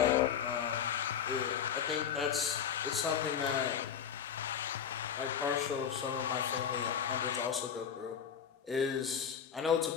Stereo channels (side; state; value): right; quieter; 8.0 dB